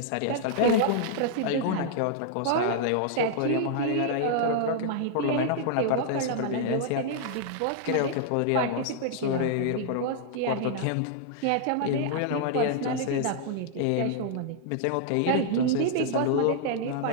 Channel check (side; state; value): both; different; correlation -0.01